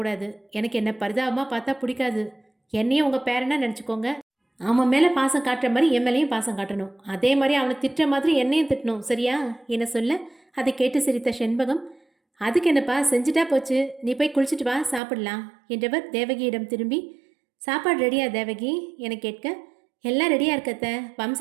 எனக்கு என்ன பரிதாபமாக பார்த்தா பிடிக்காது, என்னையும் உங்கள் பேரனா நினச்சிக்கோங்க, அவன் மேலே பாசம் காட்டுற மாதிரி என் மேலேயும் பாசம் காட்டணும், அதே மாதிரி அவனை திட்டுற மாதிரி என்னையும் திட்டணும், சரியா என சொல்ல, அதை கேட்டு சிரித்த செண்பகம், அதுக்கு என்னப்பா, செஞ்சுட்டா போச்சு, நீ போய் குளிச்சுட்டு வா, சாப்பிடலாம் என்றவர் தேவகியிடம் திரும்பி, சாப்பாடு ரெடியா தேவகி என கேட்க, எல்லாம் ரெடியாக இருக்கத்த,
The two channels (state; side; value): drops out; left; at 15.0 s